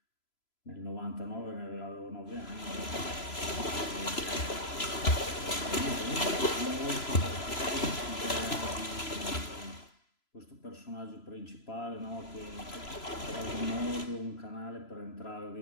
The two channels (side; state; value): right; late; 3.0 ms